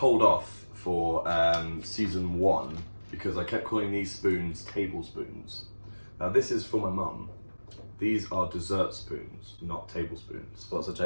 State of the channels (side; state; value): both; inverted; correlation -1.00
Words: off for season 1 because I kept calling these spoons tablespoons. Now this is for my mum. These are dessert spoons, not tablespoons. What's a